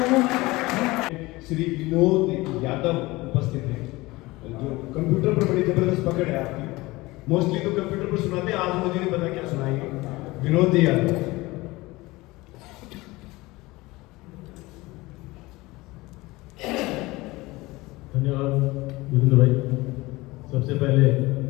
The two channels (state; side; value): quieter; right; 21.0 dB